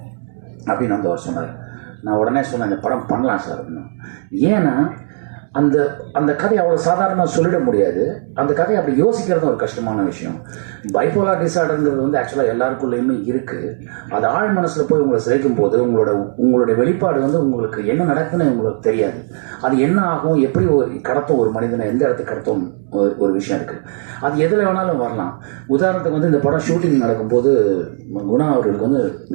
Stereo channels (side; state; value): left; silent; 65 dB below the other